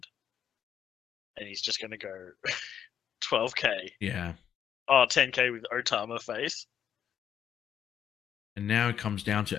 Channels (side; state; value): right; quieter; 9.0 dB